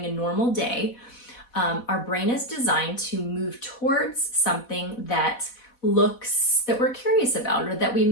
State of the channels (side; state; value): right; late; 4.1 ms